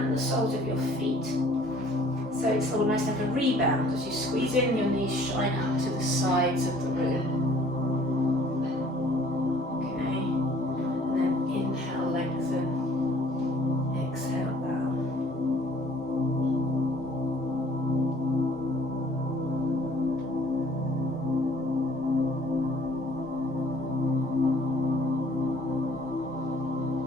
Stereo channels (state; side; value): normal; both; correlation 0.56